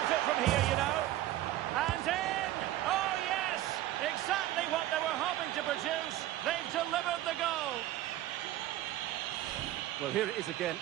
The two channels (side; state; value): left; quieter; 14.4 dB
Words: it from here, you know. And in! Oh, yes! Exactly what they were hoping to produce. They've delivered the goal. Well, here it is again,